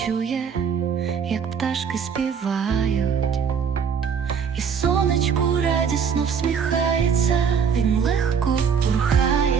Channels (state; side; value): quieter; left; 6.7 dB